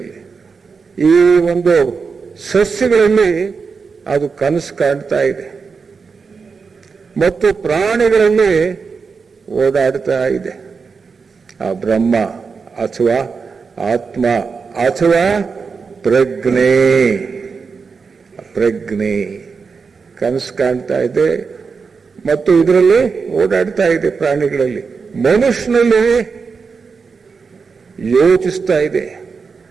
ಈ ಒಂದು ಸಸ್ಯಗಳಲ್ಲಿ ಅದು ಕನಸು ಕಾಣ್ತಾ ಇದೆ, ಮತ್ತು ಪ್ರಾಣಿಗಳಲ್ಲಿ ಓಡಾಡ್ತಾ ಇದೆ. ಆ ಬ್ರಹ್ಮ ಅಥವಾ ಆತ್ಮ ಅಥವಾ ಪ್ರಜ್ಞೆ ಕನಸು ಕಾಣ್ತಾ ಇದೆ ಮತ್ತು ಇದರಲ್ಲಿ ಓಡಾಡ್ತಾ ಇದೆ. ಪ್ರಾಣಿಗಳಲ್ಲಿ, ಮನುಷ್ಯನಲ್ಲಿ ಯೋಚಿಸ್ತಾ ಇದೆ,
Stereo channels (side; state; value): left; quieter; 5.2 dB